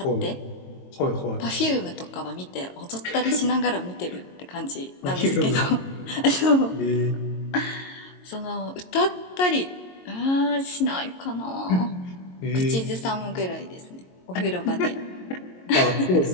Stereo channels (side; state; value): right; late; 22 ms